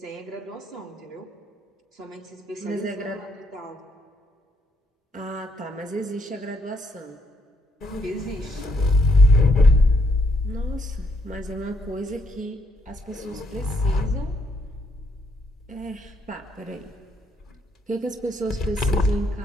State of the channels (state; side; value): normal; both; correlation 0.73